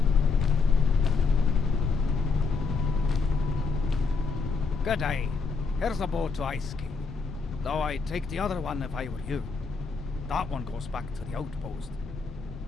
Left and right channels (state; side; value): quieter; right; 4.6 dB